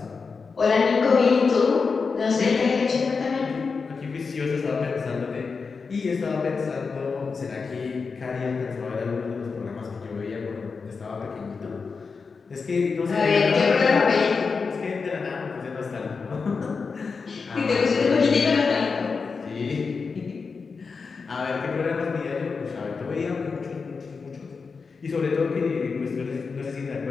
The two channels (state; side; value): quieter; right; 4.9 dB